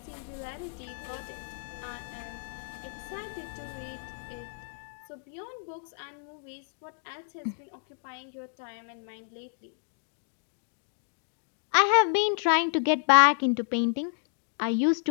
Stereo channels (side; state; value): right; silent; digital silence